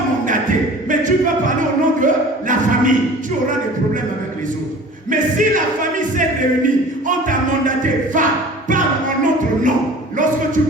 mandaté, mais tu peux parler au nom de la famille. Tu auras des problèmes avec les autres. Mais si la famille s'est réunie, on t'a mandaté, va, parle en notre nom. Lorsque tu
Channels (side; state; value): both; normal; correlation 0.43